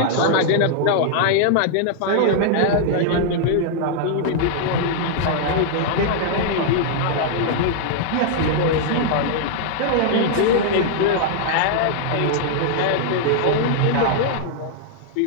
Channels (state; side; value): different; both; correlation -0.01